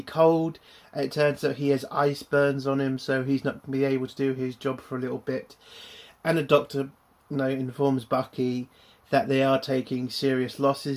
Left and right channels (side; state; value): both; identical; correlation 1.00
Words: cold. It turns out he has ice burns on him, so he's not going to be able to do his job for a little bit. And the doctor, informs Bucky that they are taking serious